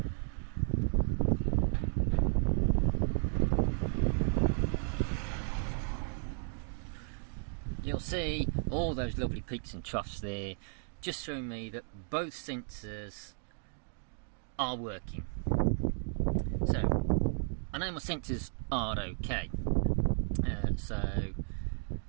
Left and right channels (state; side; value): silent; left; 55 dB below the other